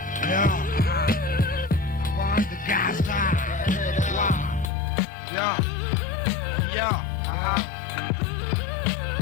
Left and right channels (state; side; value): drops out; right; at 4.7 s